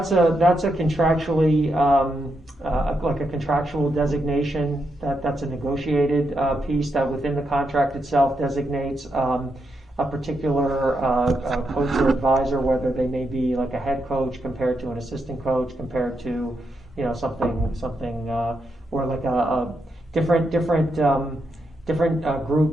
a contractually, like a contractual designation, that's a negotiated piece that within the contract itself designates a particular coach or advisor, whether they may be like a head coach compared to an assistant coach, compared to something or like a different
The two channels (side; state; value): both; normal; correlation 0.82